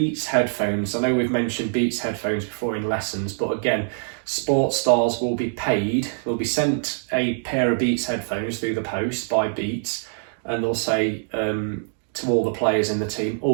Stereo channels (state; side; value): silent; left; 63 dB below the other